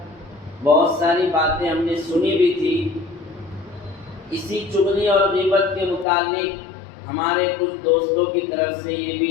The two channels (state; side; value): drops out; right; at 6.1 s